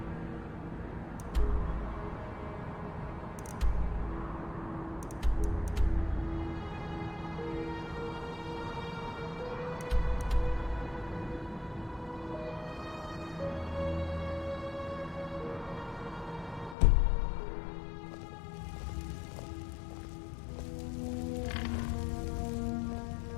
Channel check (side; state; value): right; drops out; at 16.8 s